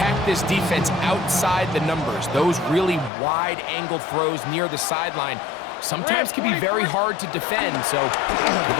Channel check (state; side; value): drops out; right; at 3.1 s